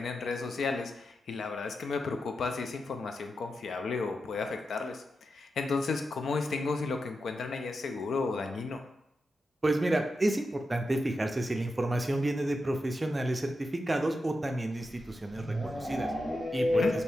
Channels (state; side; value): normal; both; correlation 0.89